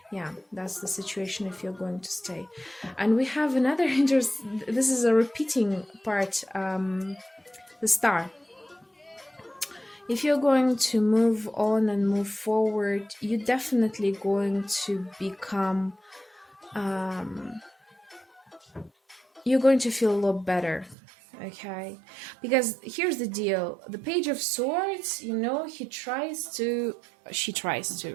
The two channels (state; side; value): drops out; left; at 21.0 s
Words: yeah, that's the situation if you're going to stay. And we have another this is a repeating part, the Star. If you're going to move on and move forward, you're definitely going to become you're going to feel a lot better. Okay, because here's the deal: the Page of Swords, you know, she tries to,